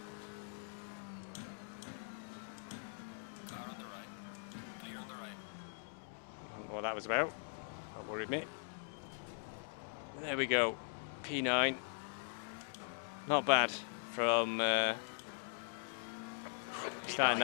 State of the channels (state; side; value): silent; right; digital silence